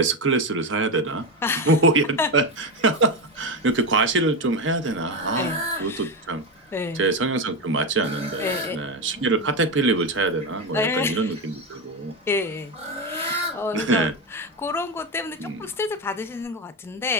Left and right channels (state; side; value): normal; both; correlation 0.14